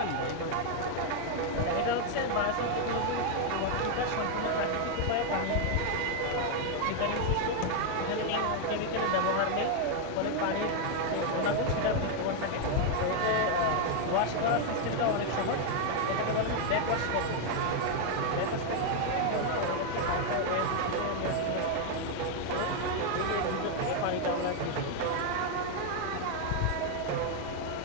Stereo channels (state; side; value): different; both; correlation 0.01